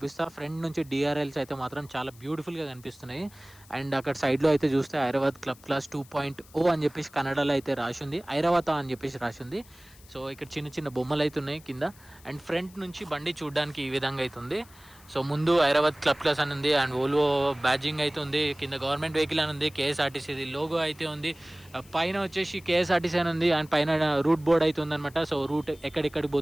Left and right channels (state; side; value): noise; left; hiss, 24 dB below the sound